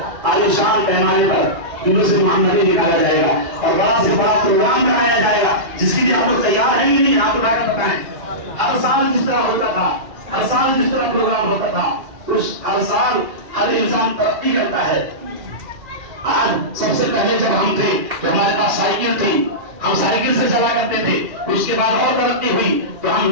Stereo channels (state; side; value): late; left; 2.3 ms